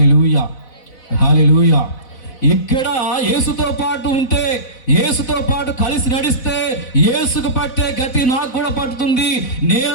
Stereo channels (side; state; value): right; late; 4.0 ms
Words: hallelujah. ఇక్కడ యేసుతో పాటు ఉంటే, యేసుతో పాటు కలిసి నడిస్తే యేసుకు పట్టే గతి నాకు కూడా పట్టుతుంది.